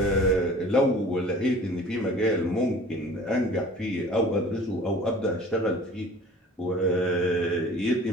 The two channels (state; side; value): normal; both; correlation 0.46